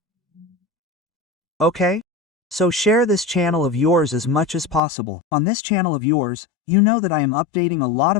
Okay? So share this channel of yours as much as possible. On this channel of yours, you know that I am updating a lot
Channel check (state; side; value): drops out; right; at 4.8 s